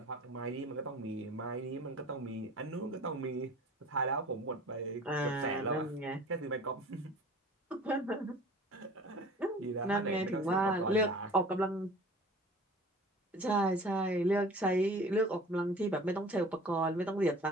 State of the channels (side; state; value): both; normal; correlation 0.44